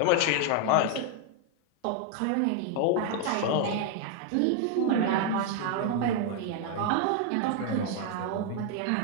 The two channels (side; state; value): both; different; correlation 0.00